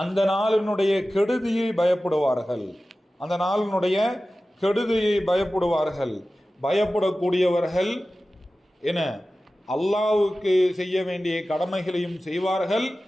அந்த நாளினுடைய கெடுதியை பயப்படுவார்கள், அந்த நாளினுடைய கெடுதியை பயப்படுவார்கள். பயப்படக்கூடியவர்கள் என அல்லாஹ்வுக்கு செய்ய வேண்டிய கடமைகளையும் செய்வார்கள்,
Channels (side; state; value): both; normal; correlation 0.96